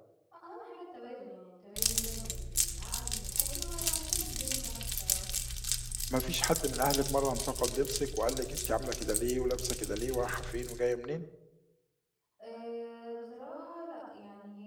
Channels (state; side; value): identical; both; correlation 1.00